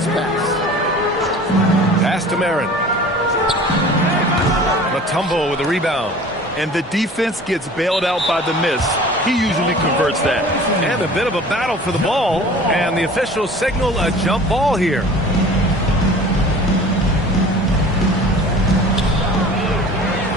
pass. Pass to Marin. Mutombo with a rebound. And the defense gets bailed out by the miss. He usually converts that. And a bit of a battle for the ball. And the officials signal a jump ball here.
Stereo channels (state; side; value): normal; both; correlation 0.44